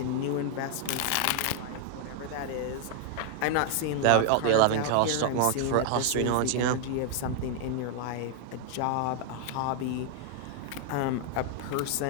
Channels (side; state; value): both; different; correlation 0.00